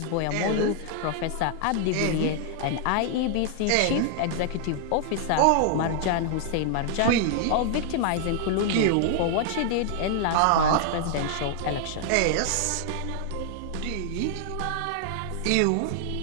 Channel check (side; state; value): both; different; correlation 0.00